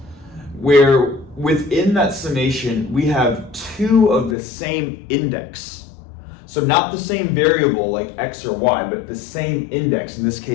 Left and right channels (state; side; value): drops out; right; at 4.4 s